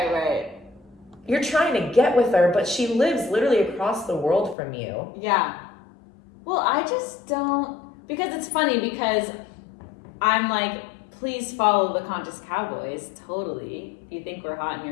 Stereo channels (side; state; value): right; drops out; at 4.5 s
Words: You're trying to get with her, but she lives literally across the world from you. Yeah. Well, I just don't, because it's funny because I'm like, please follow the Conscious Cowboys. Totally. If you think we're hot and